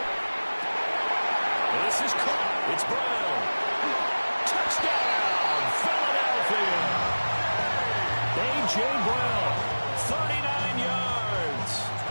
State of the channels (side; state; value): both; inverted; correlation -1.00